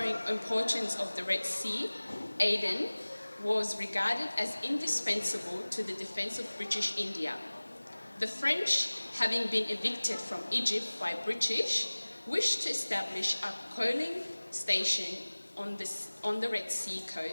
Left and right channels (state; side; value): inverted; both; correlation -1.00